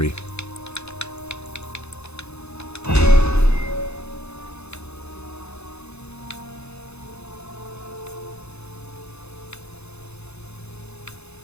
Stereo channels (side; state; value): right; late; 0.80 ms